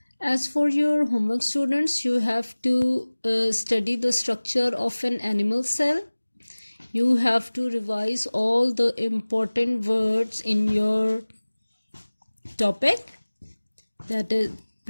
As for your homework, students, you have to study the structure of an animal cell. You have to revise all the important words in your topic, that is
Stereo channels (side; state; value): both; inverted; correlation -1.00